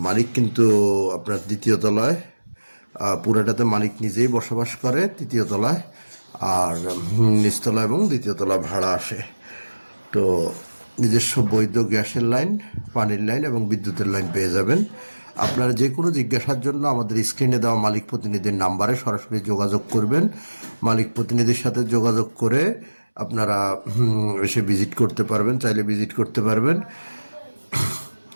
মালিক কিন্তু আপনার দ্বিতীয় তলায়, পুরোটাতে মালিক নিজেই বসবাস করে তৃতীয় তলায়, আর নিচতলা এবং দ্বিতীয় তলা ভাড়া আসে। তো নিজস্ব বৈধ গ্যাসের লাইন, পানির লাইন এবং বিদ্যুতের লাইন পেয়ে যাবেন। আপনারা যে কোনো জিজ্ঞাসার জন্য আমাদের স্ক্রিনে দেওয়া মালিক প্রতিনিধির নাম্বারে সরাসরি যোগাযোগ করবেন। মালিক প্রতিনিধির সাথে যোগাযোগ করে আপনারা এসে ভিজিট করতে পারবেন, চাইলে ভিজিট করতে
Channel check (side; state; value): both; inverted; correlation -1.00